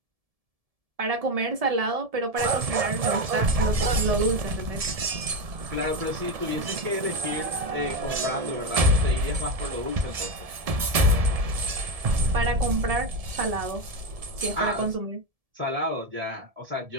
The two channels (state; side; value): late; left; 1.7 ms